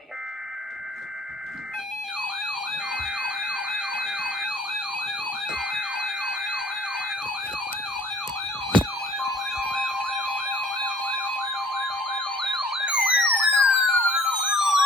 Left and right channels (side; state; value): both; normal; correlation 0.53